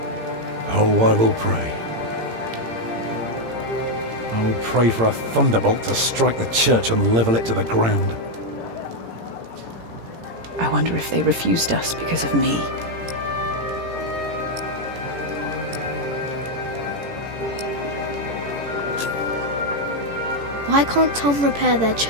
Oh, I will pray. I will pray for a thunderbolt to strike the church and level it to the ground. I wonder if they refused us because of me. Why can't Tom repair their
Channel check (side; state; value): left; late; 18 ms